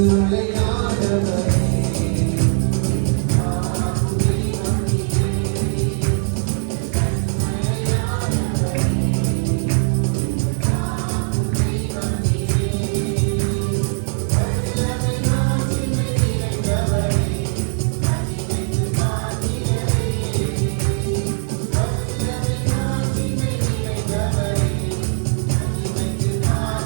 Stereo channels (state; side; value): silent; left; 65 dB below the other